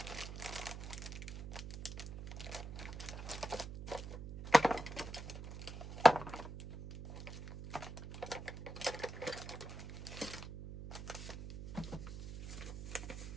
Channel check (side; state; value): right; noise; hum, 9 dB below the sound